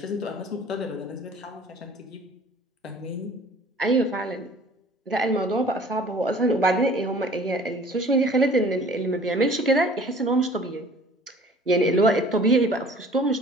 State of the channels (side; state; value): both; normal; correlation 0.50